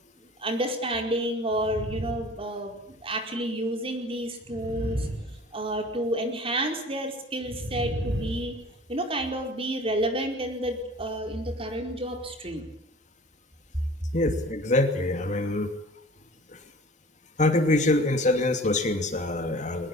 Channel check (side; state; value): both; normal; correlation 0.45